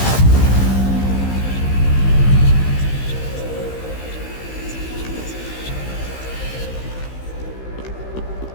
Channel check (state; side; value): late; right; 15 ms